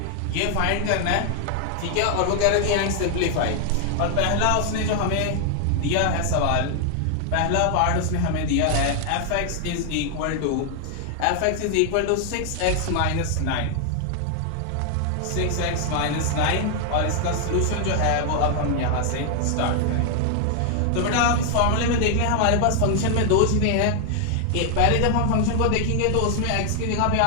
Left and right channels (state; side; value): different; both; correlation 0.00